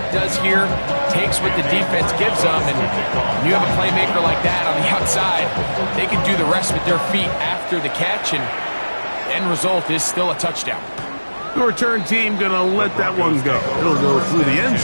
does here. Takes what the defense gives them, and when you have a playmaker like that on the outside, they can do the rest with their feet after the catch, and the end result is still a touchdown. The return team going to let that one go. It'll go through the end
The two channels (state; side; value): inverted; both; correlation -1.00